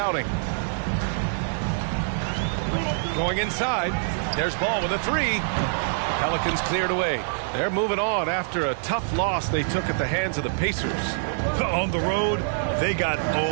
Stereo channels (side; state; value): left; silent; 62 dB below the other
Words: Going inside. There's Ball with a 3. Pelicans cleared away. They're moving on after a tough loss they took at the hands of the Pacers. On the road, they got